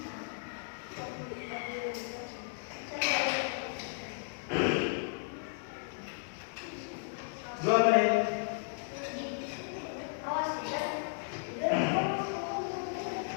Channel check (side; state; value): right; silent; digital silence